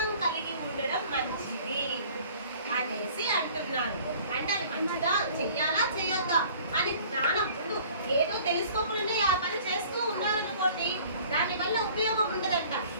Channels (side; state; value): both; inverted; correlation -0.50